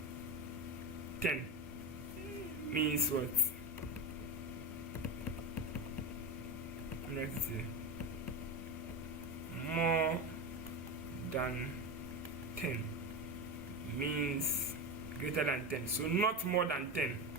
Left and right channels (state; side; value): normal; both; correlation 0.19